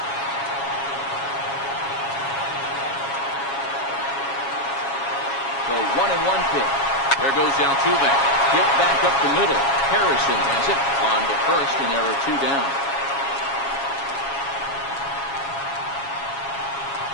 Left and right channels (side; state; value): right; late; 7.3 ms